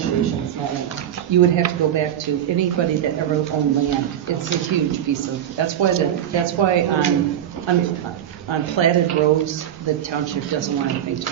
it's not in there. you would have to go back to anybody that ever owned land. It's a huge piece of, that's why on platted roads, the township doesn't want anything to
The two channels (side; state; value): left; quieter; 10.4 dB